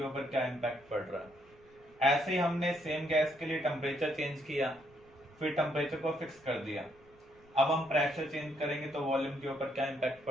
ऊपर क्या इम्पैक्ट पड़ रहा है। ऐसे ही हमने सेम गैस के लिए टेम्परेचर चेंज किया, फिर टेम्परेचर को फिक्स कर दिया। अब हम प्रेशर चेंज करेंगे तो वॉल्यूम के ऊपर क्या इम्पैक्ट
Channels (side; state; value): left; noise; rumble, 29 dB below the sound